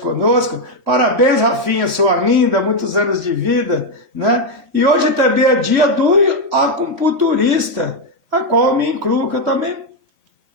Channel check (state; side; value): late; left; 3.1 ms